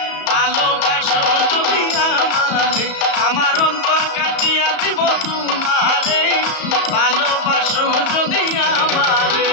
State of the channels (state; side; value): late; right; 34 ms